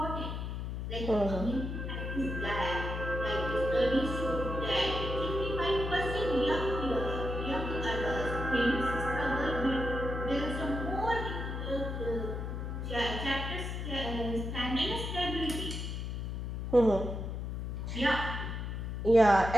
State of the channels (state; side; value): noise; left; hum, 4 dB below the sound